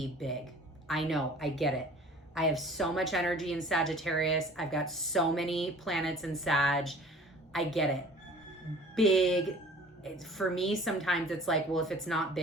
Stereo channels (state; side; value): normal; both; correlation 0.47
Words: big. I know, I get it. I have so much energy in Sagittarius. I've got so many planets in Sag. I get it. Big, for me, sometimes it's like, well, if it's not